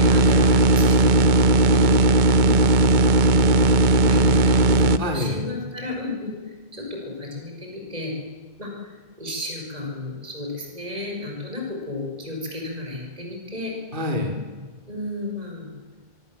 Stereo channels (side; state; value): left; late; 2.2 ms